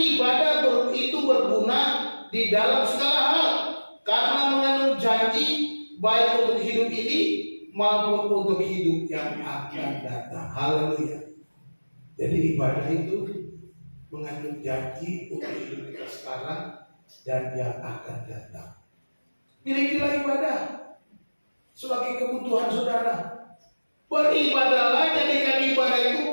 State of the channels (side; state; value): both; inverted; correlation -1.00